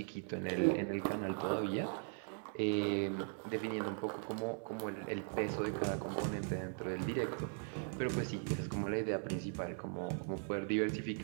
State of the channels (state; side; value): silent; left; 52 dB below the other